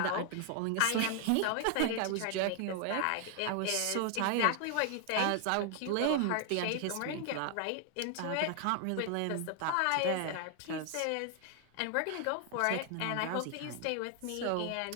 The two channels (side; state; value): both; different; correlation 0.00